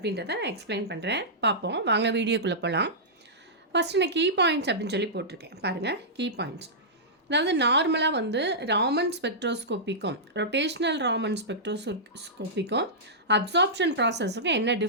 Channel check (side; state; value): both; normal; correlation -0.15